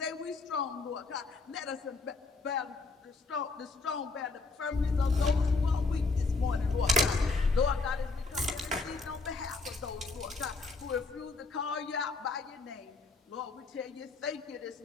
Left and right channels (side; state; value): right; quieter; 3.7 dB